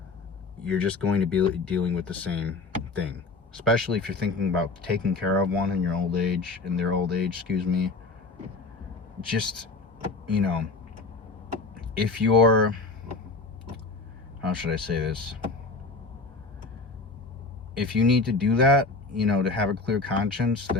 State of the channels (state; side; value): quieter; right; 3.7 dB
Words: You're just going to be dealing with the same thing. Especially if you're thinking about taking care of one in their old age, excuse me. Just, you know, if you're, how should I say this? If you need to do that, you know, to have a clear conscience,